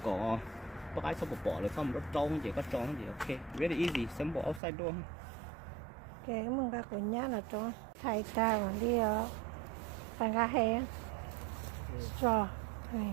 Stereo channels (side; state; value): left; drops out; at 4.6 s